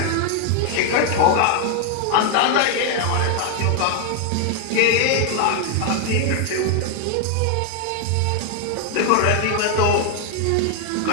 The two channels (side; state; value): both; different; correlation 0.00